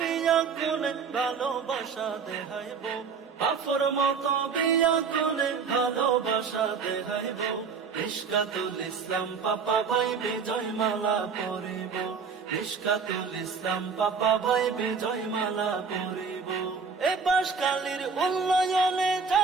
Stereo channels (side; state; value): left; quieter; 5.6 dB